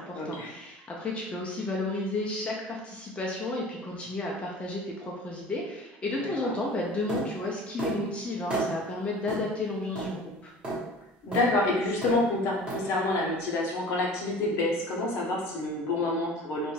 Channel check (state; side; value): normal; both; correlation 0.42